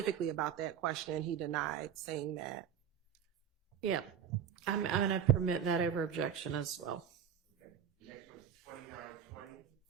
about that question and he denied saying that. Yeah. I'm going to permit that over objection as well. Okay. Next one's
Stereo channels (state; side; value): quieter; left; 8.5 dB